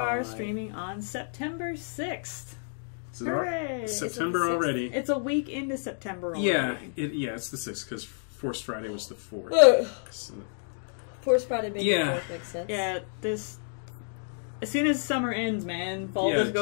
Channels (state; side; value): silent; right; digital silence